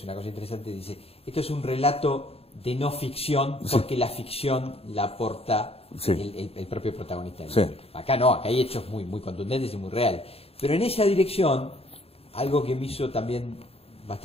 una cosa interesante, dice, esto es un relato de no ficción, porque la ficción la aporta el propio protagonista del libro. Acá no, acá hay hechos muy contundentes y muy reales. Pero en esa dirección, algo que me hizo también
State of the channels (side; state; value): right; late; 0.28 ms